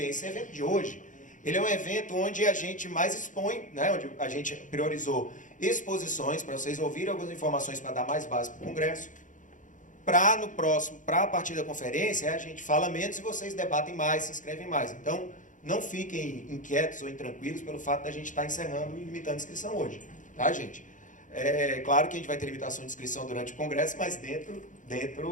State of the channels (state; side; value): late; right; 0.37 ms